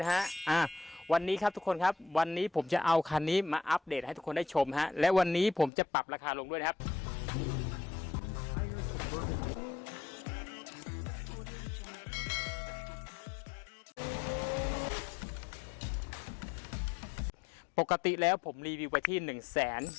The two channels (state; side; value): drops out; right; at 5.7 s